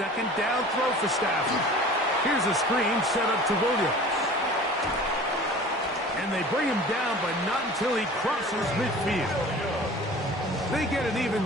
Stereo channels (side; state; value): both; normal; correlation 0.42